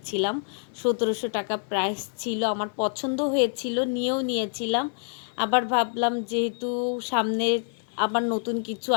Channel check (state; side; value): silent; right; 56 dB below the other